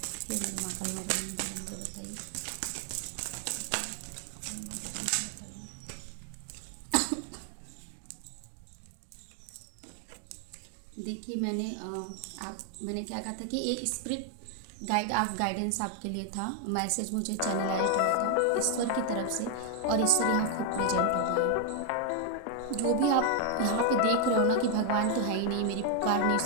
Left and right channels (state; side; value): different; both; correlation 0.00